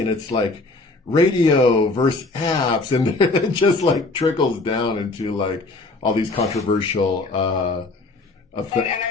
it's like radio versus apps, and it just like trickles down into like all these controversial and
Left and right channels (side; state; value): right; quieter; 3.3 dB